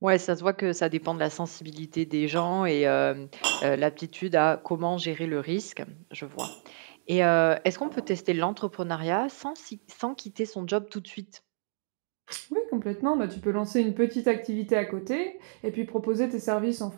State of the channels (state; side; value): silent; left; digital silence